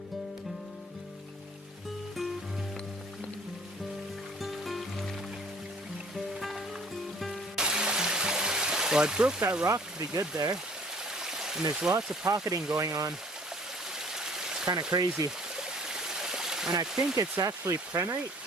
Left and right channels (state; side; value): normal; both; correlation 0.54